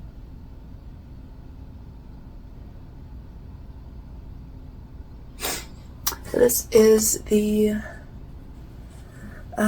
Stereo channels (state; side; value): identical; both; correlation 1.00